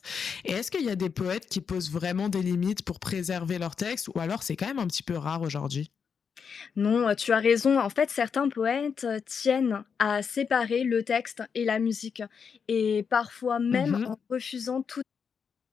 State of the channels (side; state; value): right; quieter; 6.4 dB